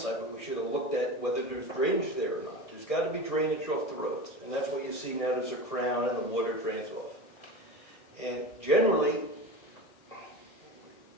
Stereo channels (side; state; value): right; late; 1.6 ms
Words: we should have looked at whether there's drainage there or not. There's got to be drainage off the roads, and that's what you see now. There's a crown and the water drains off. And generally,